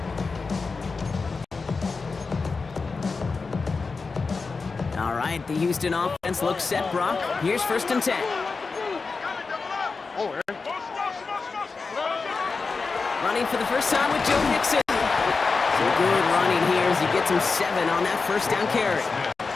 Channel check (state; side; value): quieter; right; 4.4 dB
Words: All right, the Houston offense looks set, Brock. Here's 1st and 10. Running for the first time with Joe Mixon. So good running here as he gets him 7 on that 1st down carry.